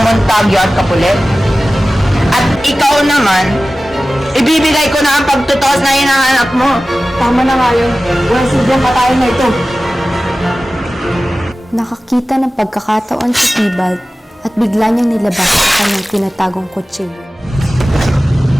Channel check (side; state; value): both; normal; correlation 0.96